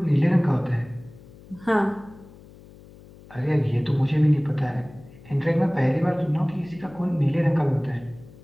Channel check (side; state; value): left; noise; hum, 21 dB below the sound